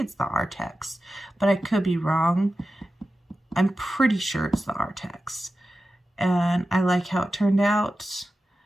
the Artex, but I could be wrong. I'm pretty sure it's the Artex. And I like how it turned out.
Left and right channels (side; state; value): both; normal; correlation 0.93